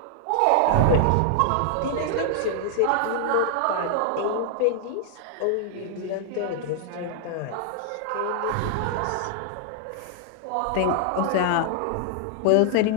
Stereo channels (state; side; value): different; both; correlation -0.01